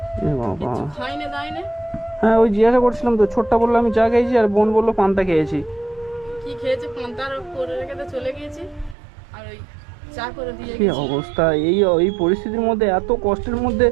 এ বাবা! কিছু খাইনে দাইনে। হ্যাঁ ওই জিজ্ঞাসা করছিলাম তো, ছোটটা বললো আমি চা খেয়েছি, আর বোন বললো পান্তা খেয়েছি। কি খেয়েছে? পান্তার করে রেখে তো চলে গিয়েছি, আর ওই চা করে দিয়ে কি গেছি। অবস্থা! এই পরিস্থিতির মধ্যে, এত কষ্টের মধ্যে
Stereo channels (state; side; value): drops out; left; at 9.0 s